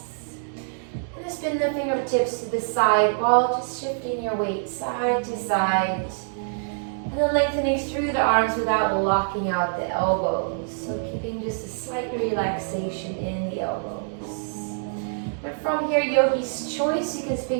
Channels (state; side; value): silent; left; digital silence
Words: And then spin the fingertips to the side while just shifting your weight side to side. And then lengthening through the arms without locking out the elbows. So keeping just a slight relaxation in the elbows. And from here, yogi's choice, you can